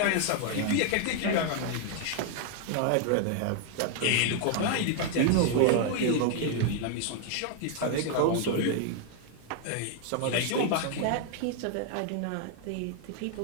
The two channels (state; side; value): different; both; correlation 0.00